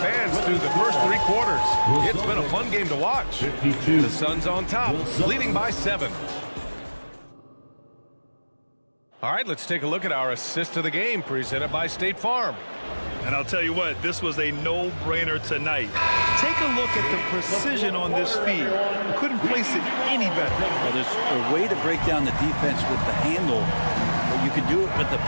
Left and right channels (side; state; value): both; inverted; correlation -1.00